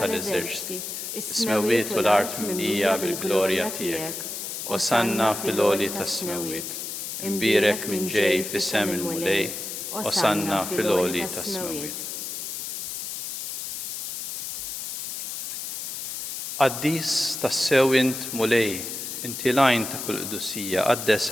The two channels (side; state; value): left; noise; hiss, 6 dB below the sound